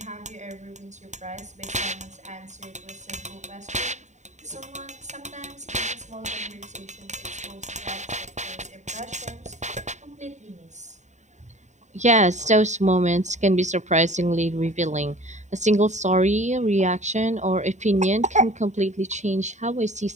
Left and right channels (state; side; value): late; left; 0.34 ms